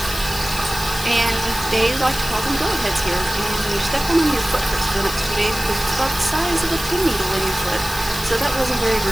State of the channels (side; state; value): left; noise; hiss, 9 dB below the sound